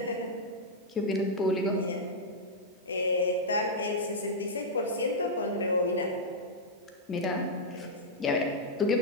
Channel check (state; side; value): normal; both; correlation -0.06